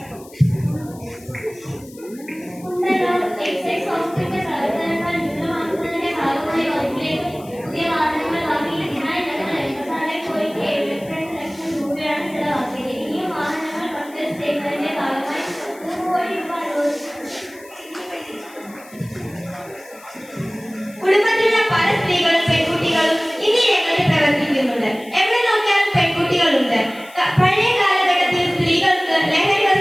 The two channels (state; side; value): noise; left; hiss, 23 dB below the sound